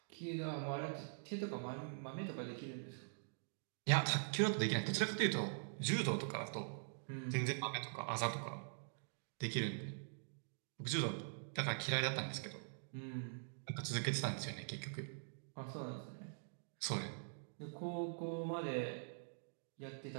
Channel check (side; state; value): left; silent; digital silence